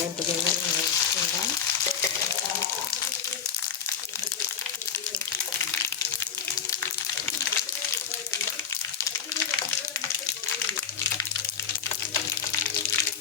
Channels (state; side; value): quieter; right; 7.4 dB